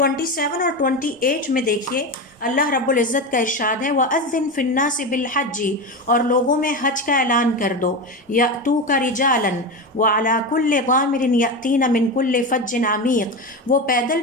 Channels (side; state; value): both; normal; correlation 0.19